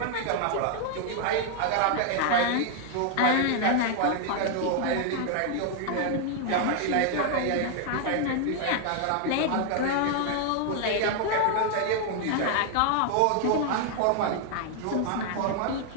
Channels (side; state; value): both; different; correlation 0.00